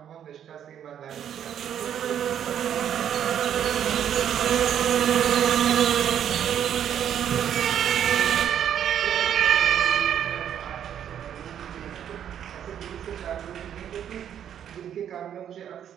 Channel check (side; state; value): left; quieter; 9.5 dB